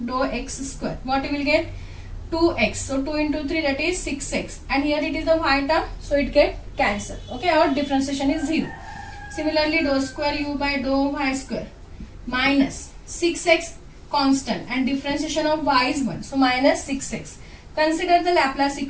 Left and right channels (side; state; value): both; identical; correlation 1.00